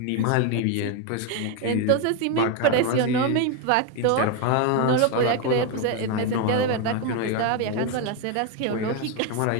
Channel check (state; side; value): different; both; correlation 0.01